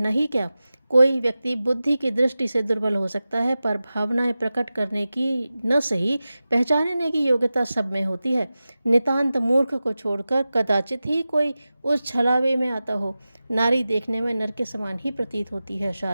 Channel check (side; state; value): both; inverted; correlation -0.95